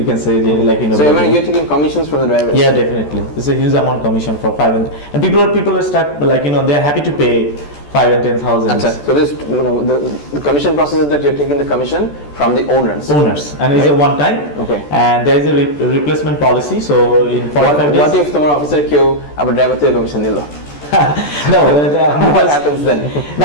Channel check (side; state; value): right; late; 14 ms